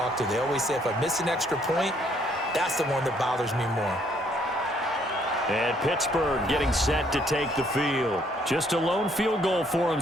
to. They always say if I miss an extra point, that's the one that bothers me more. And Pittsburgh getting set to take the field. Just a lone field goal for them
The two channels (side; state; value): both; normal; correlation 0.67